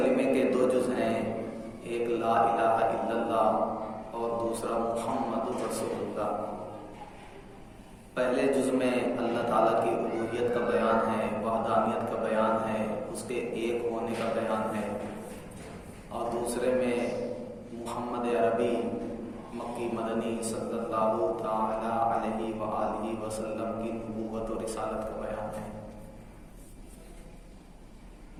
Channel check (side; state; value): both; identical; correlation 1.00